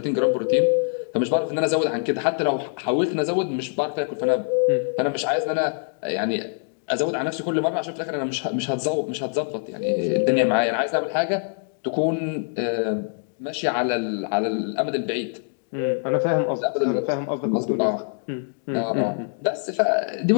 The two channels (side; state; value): right; silent; 63 dB below the other